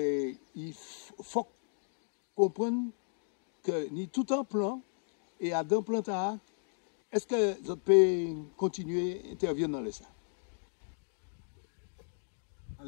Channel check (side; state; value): right; silent; digital silence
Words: il faut comprendre que ni tout un plan et à d'un plan est-ce que vous pouvez continuer à intervenir dans les ça?